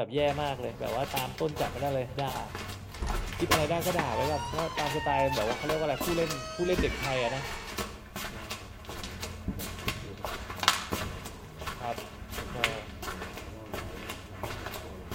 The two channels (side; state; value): both; identical; correlation 1.00